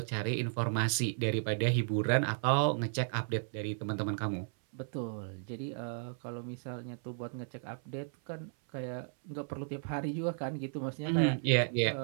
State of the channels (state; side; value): silent; left; 55 dB below the other